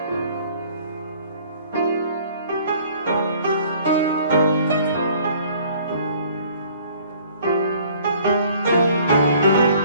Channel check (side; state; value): both; inverted; correlation -0.55